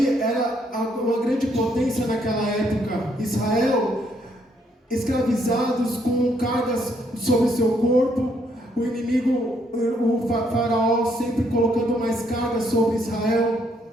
era uma grande potência naquela época. Israel, escravizados com cargas sobre seu corpo, o inimigo, o faraó sempre colocando mais carga sobre Israel.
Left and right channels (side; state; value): both; normal; correlation 0.71